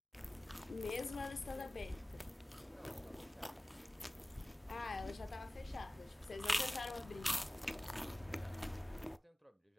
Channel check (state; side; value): normal; both; correlation 0.98